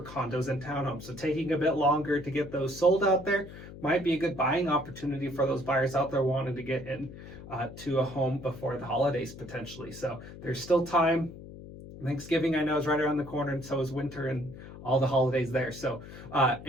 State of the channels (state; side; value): noise; left; hum, 14 dB below the sound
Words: condos and townhomes. So taking a bit longer to get those sold out there might be a good buying opportunity for those buyers out there wanting to get in to a home before the holidays potentially. So there's still time. Thanksgiving, I know, is right around the corner, and so is winter and all the holidays there. So